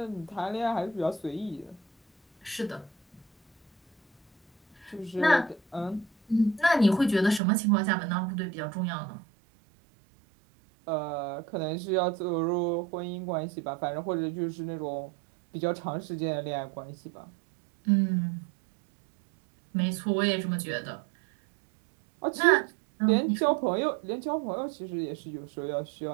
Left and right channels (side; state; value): left; drops out; at 7.4 s